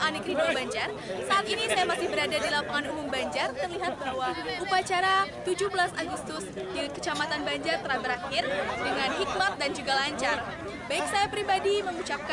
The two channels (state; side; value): identical; both; correlation 1.00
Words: Negeri 2 Banjar. Saat ini saya masih berada di lapangan umum Banjar. Terlihat bahwa upacara 17 Agustus di Kecamatan Banjar telah berakhir dengan hikmat dan juga lancar. Baik, saya pribadi